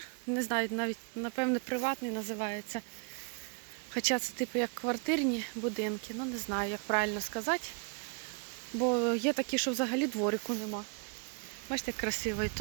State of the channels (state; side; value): quieter; left; 38.1 dB